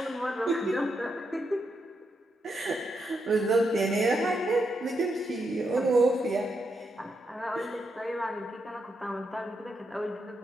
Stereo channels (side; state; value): both; normal; correlation 0.82